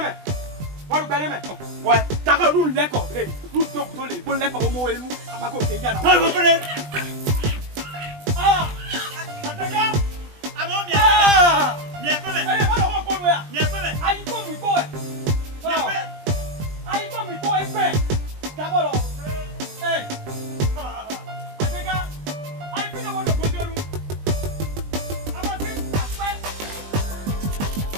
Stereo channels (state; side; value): late; left; 20 ms